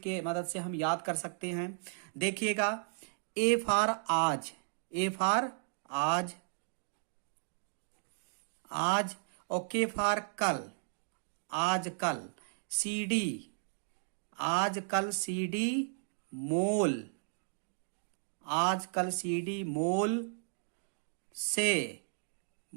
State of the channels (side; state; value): left; silent; digital silence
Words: के मदद से हम याद कर सकते हैं। देखिएगा, ए फॉर आज, ए फॉर आज, आज। ओके फॉर कल, आज कल। सीडी, आज कल सीडी मोल, आज कल सीडी मोल से,